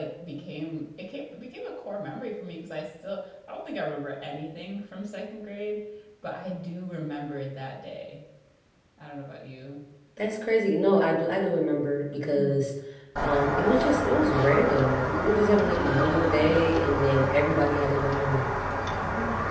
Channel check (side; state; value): both; identical; correlation 1.00